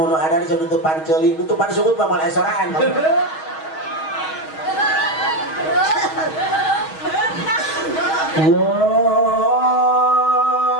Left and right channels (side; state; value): right; late; 6.3 ms